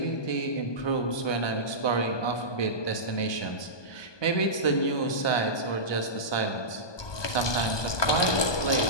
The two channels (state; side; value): late; right; 1.2 ms